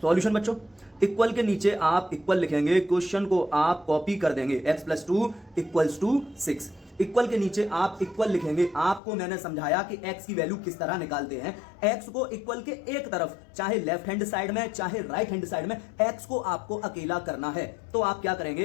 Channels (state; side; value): drops out; right; at 9.0 s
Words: बच्चों, इक्वल के नीचे आप इक्वल लिखेंगे, क्वेश्चन को आप कॉपी कर देंगे, x plus 2 equals to 6। Equal के नीचे आप इक्वल लिखेंगे। आपको मैंने समझाया कि x की वैल्यू किस तरह निकालते हैं। x को इक्वल के एक तरफ, चाहे लेफ्ट हैंड साइड में चाहे राइट हैंड साइड में, x को आपको अकेला करना है। तो आप क्या